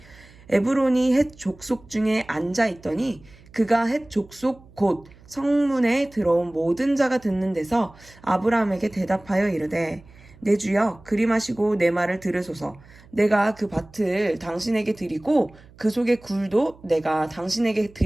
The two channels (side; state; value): right; noise; hum, 24 dB below the sound